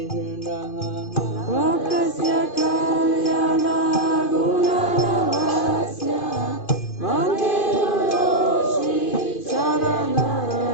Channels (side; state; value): right; late; 2.5 ms